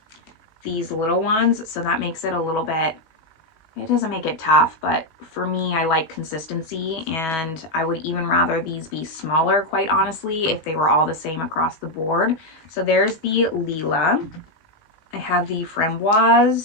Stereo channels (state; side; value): late; right; 19 ms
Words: these little ones, so that makes it a little bit, it doesn't make it tough, but for me, I like consistency, and I would even rather these be smaller, quite honestly, if they were all the same across the board. So there's the Lila. I have the